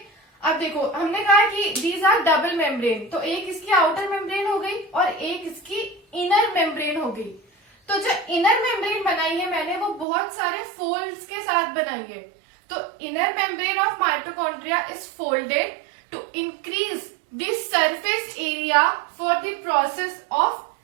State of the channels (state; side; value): drops out; left; at 10.1 s